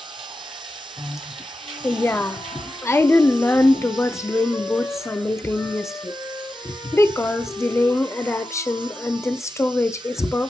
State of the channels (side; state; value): both; normal; correlation 0.91